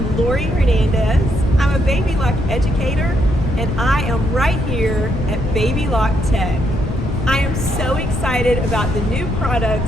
Lori Hernandez. I'm a Baby Lock educator and I am right here at Baby Lock Tech. I am so excited about the new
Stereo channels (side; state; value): left; noise; rumble, 3 dB below the sound